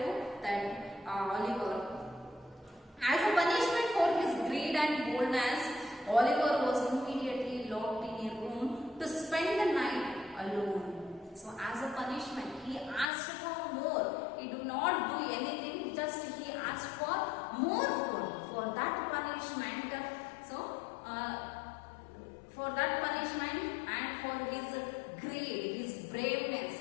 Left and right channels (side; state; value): right; drops out; at 13.1 s